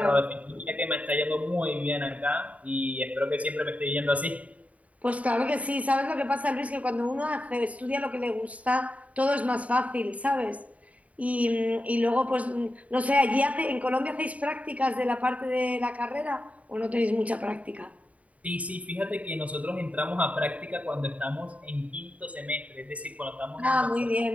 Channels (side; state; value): left; late; 0.068 ms